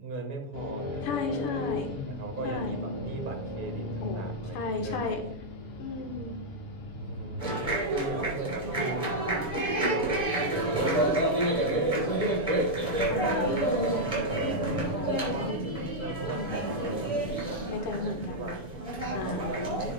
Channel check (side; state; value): right; late; 7.0 ms